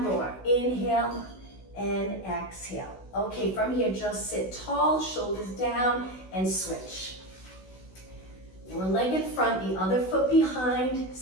more, inhale and exhale. Okay, from here, just sit tall, shoulders down, and switch. One leg in front, the other foot behind.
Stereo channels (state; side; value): late; right; 16 ms